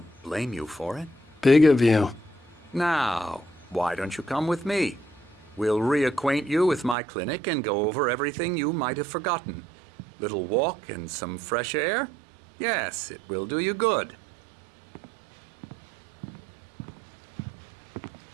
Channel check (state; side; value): drops out; left; at 7.0 s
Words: blame you for it. Big of you. Now, why don't you come with me? We'll reacquaint you with my clinic and go over everything you might have forgotten. Little walk and some fresh air? Yes, it will do you good.